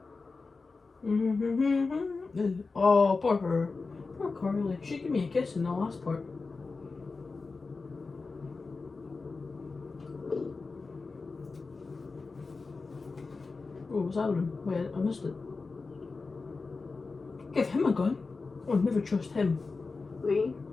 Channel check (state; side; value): quieter; right; 4.1 dB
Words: Oh, poor her. Poor Carly. She gave me a kiss in the last part. Oh, what's happening? Wait, I missed it. Give him a gun. I would never trust him. Lee,